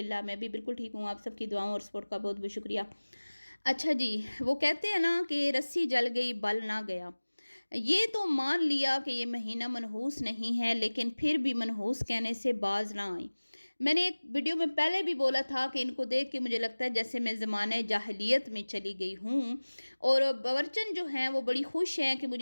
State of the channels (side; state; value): both; inverted; correlation -1.00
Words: मैं भी बिल्कुल ठीक हूँ। आप सबकी दुआओं और सपोर्ट का बहुत-बहुत शुक्रिया। अच्छा जी, वो कहते हैं ना कि रस्सी जल गई बल ना गया। ये तो मान लिया कि ये महीना मनहूस नहीं है, लेकिन फिर भी मनहूस कहने से बाज़ ना आई। मैंने एक वीडियो में पहले भी बोला था कि इनको देख के मुझे लगता है जैसे मैं ज़माने जाहिलियत में चली गई हूँ और बावर्चन जो हैं वो बड़ी खुश हैं कि